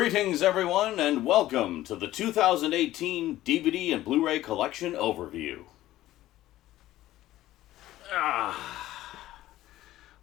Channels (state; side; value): quieter; right; 14.9 dB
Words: everyone, and welcome to the 2018 DVD and Blu-ray Collection Overview.